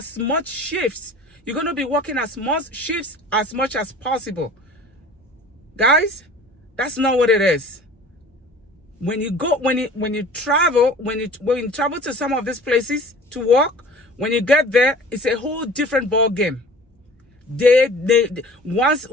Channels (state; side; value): normal; both; correlation 0.44